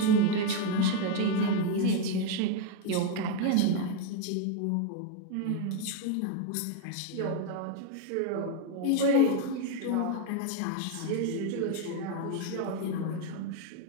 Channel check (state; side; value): different; both; correlation 0.01